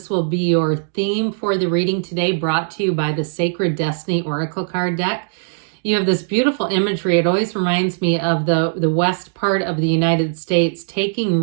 will be your theme for the reading today, brought to you by the Sacred Destiny Oracle card deck. You have this beautiful imagery. It always reminds me of the west part of the United States, taking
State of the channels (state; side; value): silent; left; digital silence